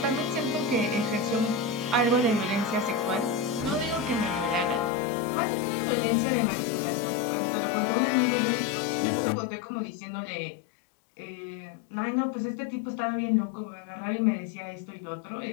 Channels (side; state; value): right; drops out; at 4.9 s